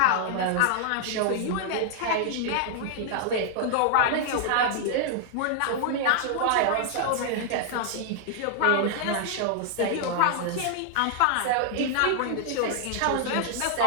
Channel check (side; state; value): both; different; correlation -0.01